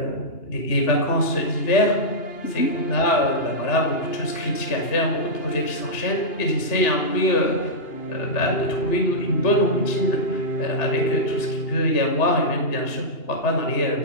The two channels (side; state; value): right; late; 2.8 ms